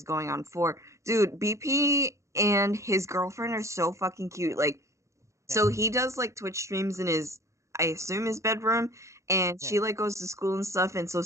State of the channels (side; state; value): left; late; 0.14 ms